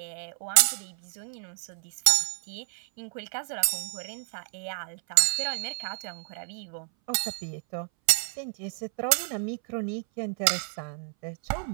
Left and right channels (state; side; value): silent; left; 58 dB below the other